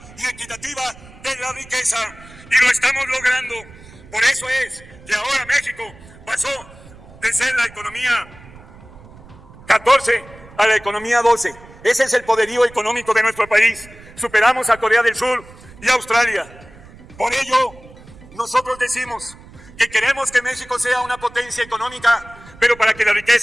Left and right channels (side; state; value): right; noise; rumble, 21 dB below the sound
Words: y equitativa de la riqueza. Y lo estamos logrando. Por eso es que ahora México pasó de ser la economía 14 a la economía 12. Ese es el poderío económico de nuestro país. Superamos a Corea del Sur y a Australia. Por ello, nosotros decimos que queremos que México sea una potencia económica, pero para que la